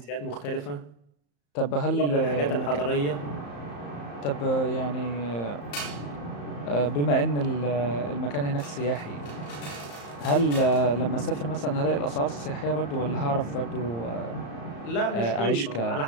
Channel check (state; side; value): late; right; 34 ms